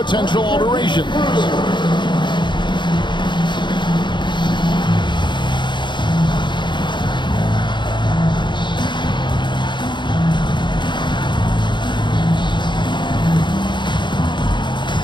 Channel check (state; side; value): late; right; 0.22 ms